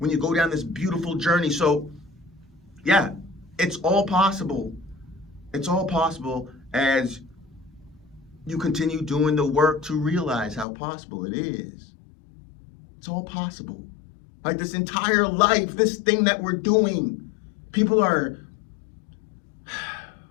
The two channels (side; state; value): right; drops out; at 10.7 s